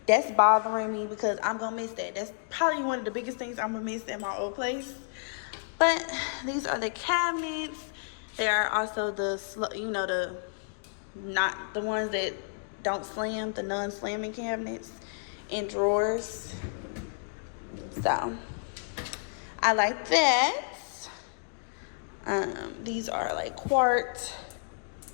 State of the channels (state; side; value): silent; right; digital silence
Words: that's bothering me because I'm going to miss that. That's probably one of the biggest things I'm going to miss at my old place. But these are the cabinets. They are also the, you know, the, not the ones that don't slam, the non-slamming cabinets and drawers. So I like that. These are like quartz